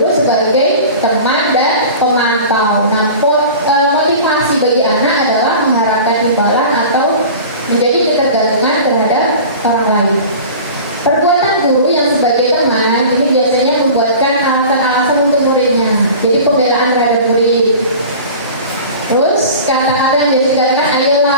sebagai teman dan pemantau. Nah, motivasi bagi anak adalah mengharapkan imbalan atau menjadi ketergantungan terhadap orang lain. Perbuatan guru yang sebagai teman ini biasanya membuatkan alasan-alasan untuk muridnya. Jadi pembelaan terhadap murid. Terus kadang-kadang dia dikatakan, ayolah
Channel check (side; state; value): both; inverted; correlation -0.38